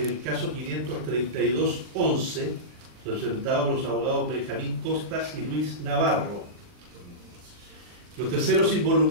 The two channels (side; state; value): left; late; 40 ms